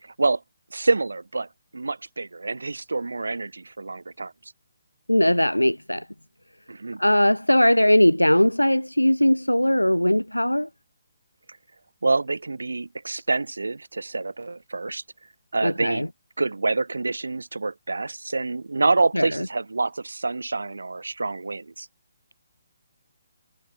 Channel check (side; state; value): both; inverted; correlation -0.98